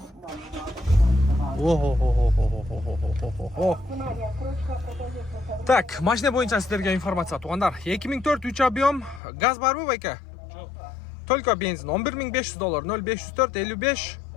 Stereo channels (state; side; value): drops out; right; at 9.2 s